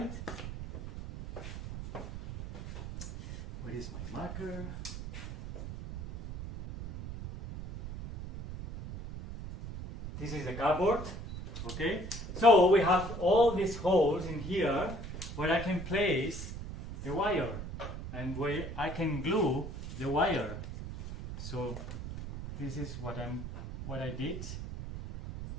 Where is my marker? This is the cardboard, okay? So we have all these holes in here where I can place the wire and where I can glue the wire. So this is what I did.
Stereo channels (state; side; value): noise; right; rumble, 8 dB below the sound